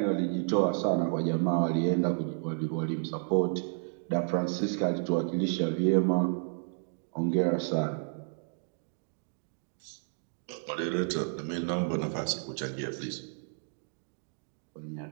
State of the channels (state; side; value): silent; left; digital silence